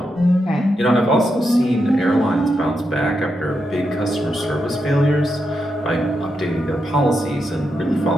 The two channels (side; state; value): both; normal; correlation 0.85